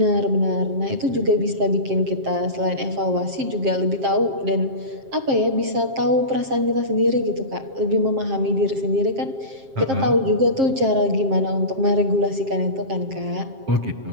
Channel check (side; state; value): left; late; 7.5 ms